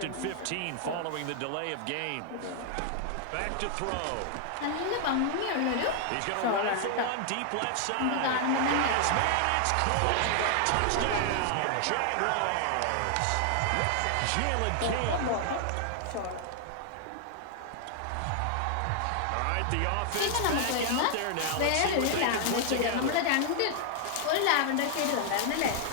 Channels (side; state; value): both; different; correlation 0.00